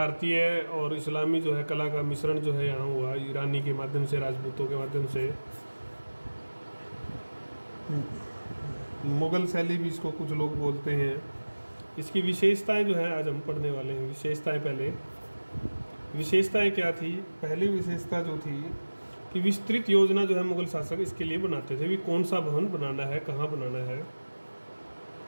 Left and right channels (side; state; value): both; inverted; correlation -1.00